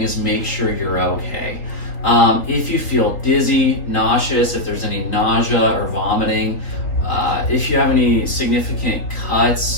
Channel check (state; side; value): late; right; 3.8 ms